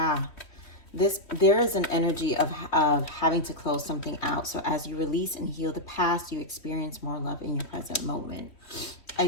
There is an energy of having to close something out. So as you release and heal the past, you experience more love in your present moment. I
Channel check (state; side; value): late; right; 3.1 ms